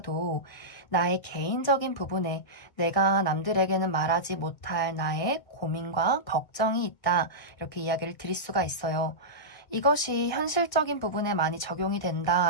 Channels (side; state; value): right; late; 1.4 ms